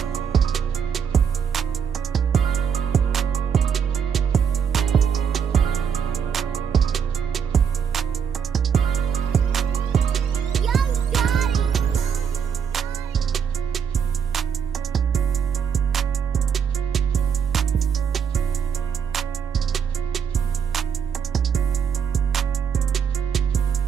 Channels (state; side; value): quieter; left; 7.2 dB